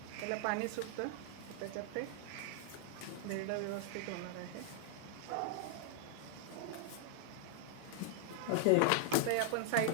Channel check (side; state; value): both; different; correlation 0.00